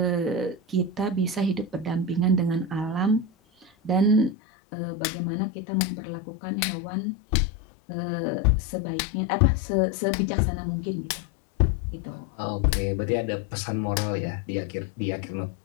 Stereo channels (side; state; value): right; drops out; at 4.4 s